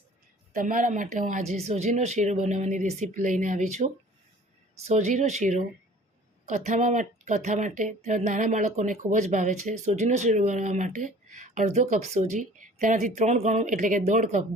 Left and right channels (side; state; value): both; normal; correlation 0.49